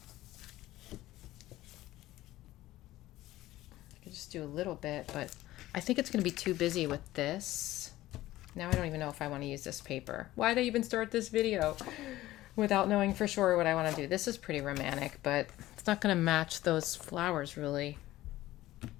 I could just do a little bit, but I think it's going to be too busy with this. Now I don't even know if I want to use this paper. Why did I even start this video without knowing for sure what I want to do? This is pretty romantic, but it's not going to match those flowers really.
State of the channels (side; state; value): right; quieter; 16.0 dB